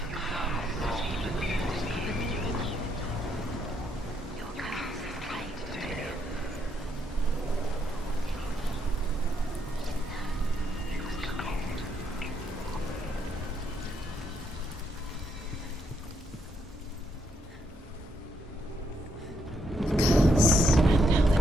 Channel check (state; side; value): normal; both; correlation 0.76